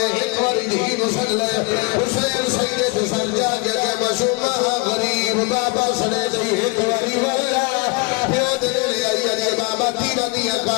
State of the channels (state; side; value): quieter; right; 28.5 dB